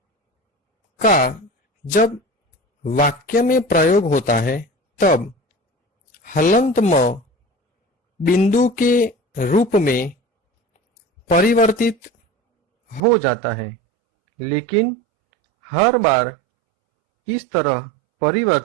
का जब वाक्य में प्रयोग होता है तब हलंत म बिंदु के रूप में परिवर्तित हो जाता है, लेकिन हर बार इस तरह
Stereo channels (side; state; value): left; drops out; at 13.0 s